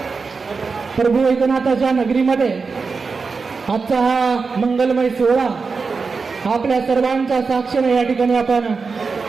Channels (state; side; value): quieter; left; 4.7 dB